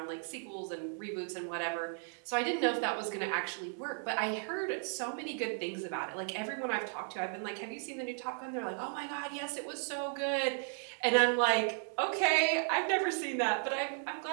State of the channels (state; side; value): silent; left; 54 dB below the other